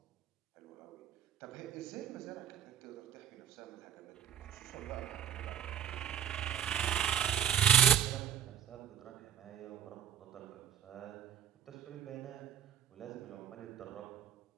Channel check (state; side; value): quieter; left; 9.6 dB